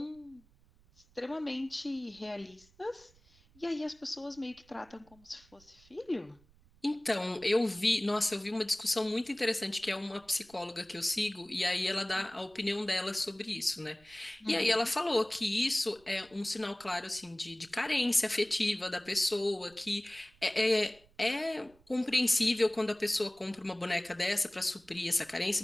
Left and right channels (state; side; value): noise; right; rumble, 29 dB below the sound